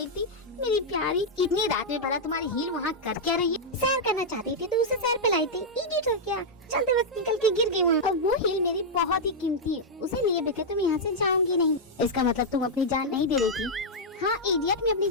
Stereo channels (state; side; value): normal; both; correlation -0.05